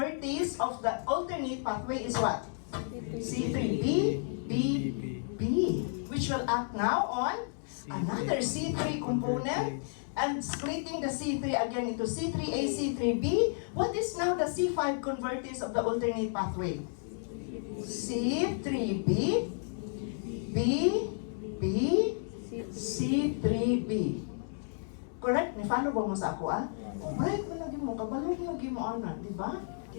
of the alternate pathway is what? C3B, BB. Which will act now on another C3 component and splitting the C3 again into C3A, C3B. What is now the C5 convertase of the alternate pathway? C3B, BB, C3B. Correct? Ni-follow ba mo sa ako, ah? Right, malagi mo, kabalo lagi mo, ana, di ba?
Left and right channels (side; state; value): right; silent; digital silence